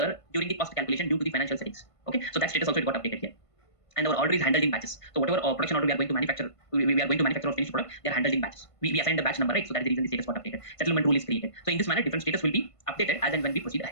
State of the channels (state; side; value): late; right; 1.5 ms